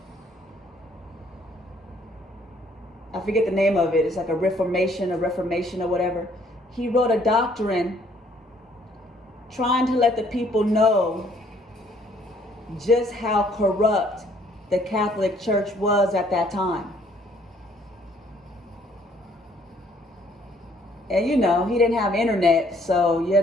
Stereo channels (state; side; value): normal; both; correlation 0.63